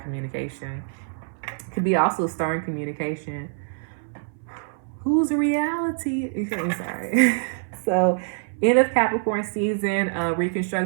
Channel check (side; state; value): left; silent; 61 dB below the other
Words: Could be also stern communication. Whose reality? I'm sorry. So, end of Capricorn season,